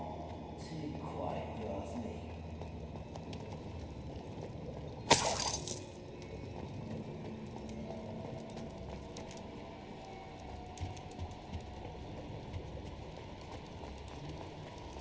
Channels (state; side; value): identical; both; correlation 1.00